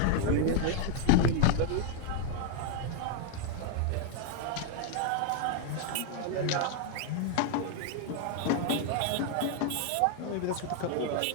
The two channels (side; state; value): both; different; correlation 0.00